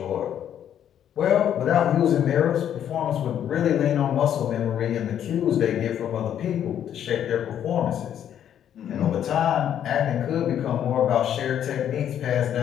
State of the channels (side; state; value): right; quieter; 9.9 dB